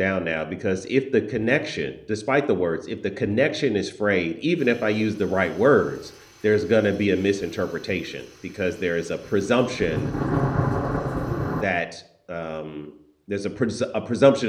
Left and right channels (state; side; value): identical; both; correlation 1.00